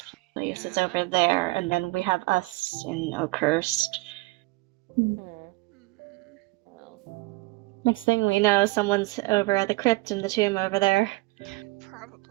place is over there, and then we have us in Oakhurst. Next thing we know, someone's over at the crypt in the tomb over there.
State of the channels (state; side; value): quieter; left; 23.9 dB